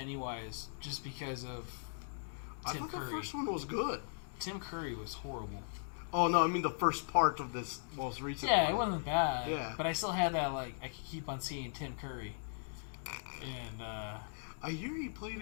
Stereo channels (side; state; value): right; silent; digital silence